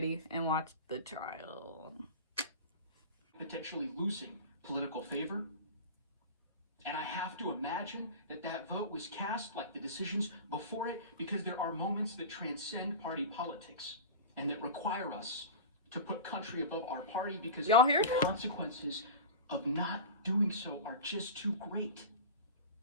and watch the trial. Potentially losing political favor. And I have to imagine that that vote was cast like the decisions before it, because there are moments that transcend party politics and that require us to put country above our party, because y'all hear the consequences of not doing so are just too great.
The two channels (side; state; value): both; inverted; correlation -0.30